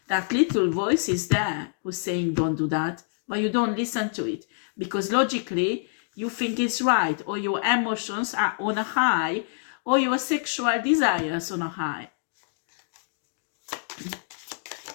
that little voice is there who's saying don't do that, but you don't listen to it. Because logically, you think it's right, or your emotions are on a high, or your sexual desires on a high.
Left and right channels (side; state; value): right; silent; digital silence